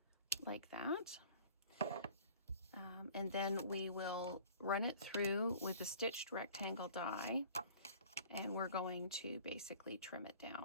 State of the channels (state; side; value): inverted; both; correlation -0.47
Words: like that. And then we will run it through with the stitched rectangle die, and we're going to basically trim it